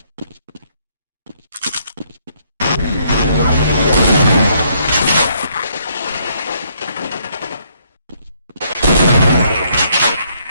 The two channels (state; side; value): inverted; both; correlation -0.69